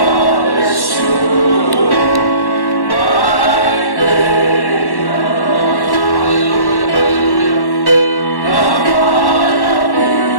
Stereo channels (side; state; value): right; late; 1.1 ms